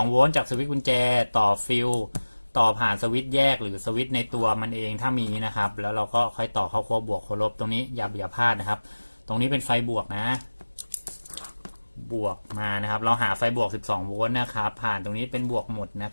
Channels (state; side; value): inverted; both; correlation -1.00